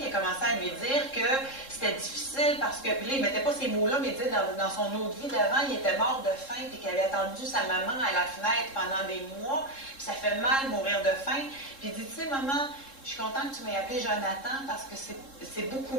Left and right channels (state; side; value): late; right; 3.7 ms